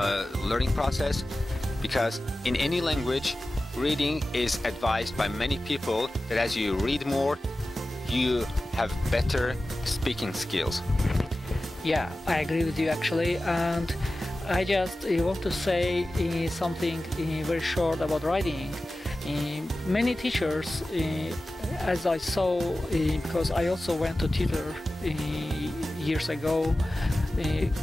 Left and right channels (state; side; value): normal; both; correlation 0.95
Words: learning process, because in any language, reading is advised by many people that as you read more, you have better speaking skills. Yeah, I agree with you actually, and I just want to say something very short about writing. Many teachers, as I saw, because I also went to tutor years ago,